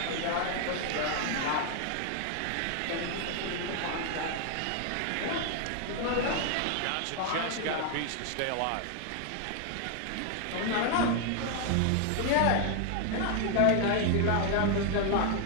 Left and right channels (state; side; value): different; both; correlation 0.00